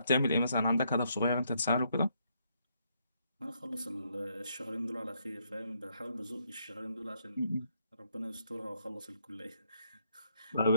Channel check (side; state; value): both; inverted; correlation -0.74